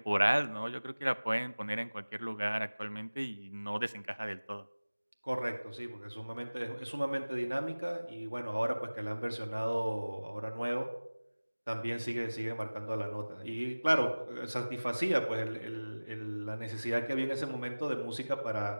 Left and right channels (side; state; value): both; inverted; correlation -1.00